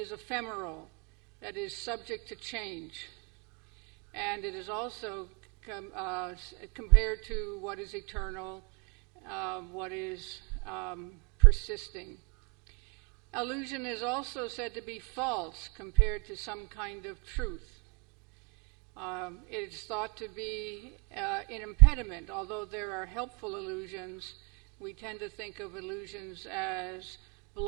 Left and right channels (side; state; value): left; quieter; 31.8 dB